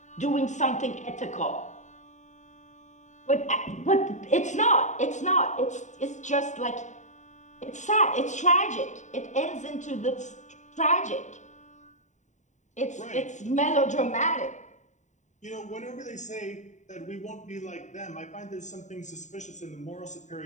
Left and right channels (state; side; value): late; right; 0.35 ms